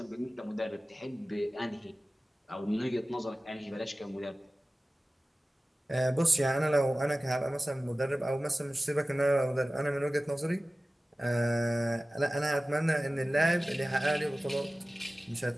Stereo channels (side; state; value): both; normal; correlation 0.96